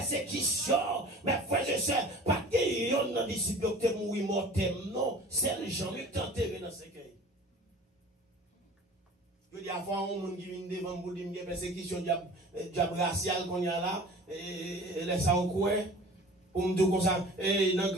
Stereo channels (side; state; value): both; normal; correlation 0.43